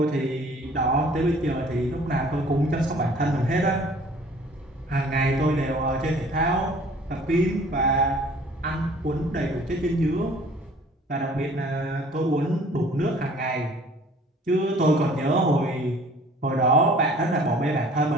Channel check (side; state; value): both; normal; correlation 0.52